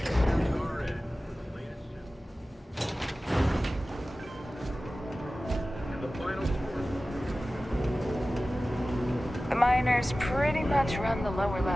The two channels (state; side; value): normal; both; correlation 0.96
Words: stomach. The miners pretty much run the lower